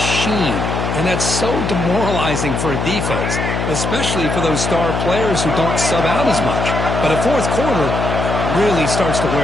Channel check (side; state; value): left; noise; hum, 2 dB below the sound